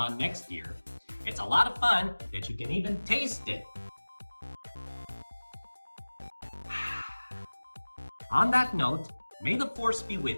next year. It's a lot of fun that you can even taste it. On that note, may the Force be with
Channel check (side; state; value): both; inverted; correlation -1.00